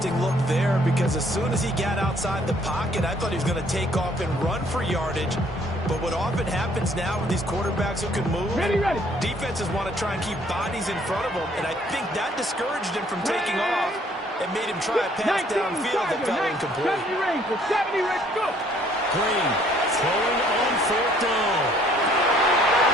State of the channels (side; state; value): both; normal; correlation 0.62